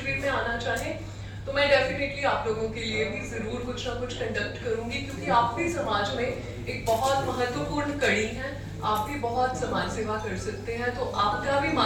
में आना चाहें तो मैं डेफिनेटली आप लोगों के लिए भी जरूर कुछ ना कुछ कंडक्ट करूंगी, क्योंकि आप भी समाज में एक बहुत महत्वपूर्ण कड़ी हैं, आप भी बहुत समाज सेवा कर सकते हैं, तो आपका भी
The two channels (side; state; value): both; identical; correlation 1.00